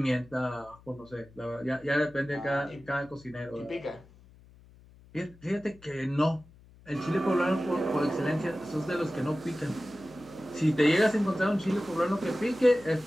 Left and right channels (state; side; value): noise; left; hum, 24 dB below the sound